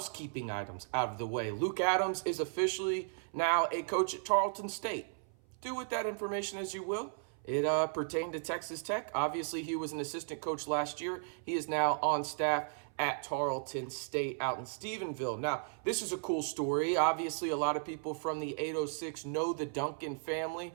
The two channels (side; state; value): left; silent; 54 dB below the other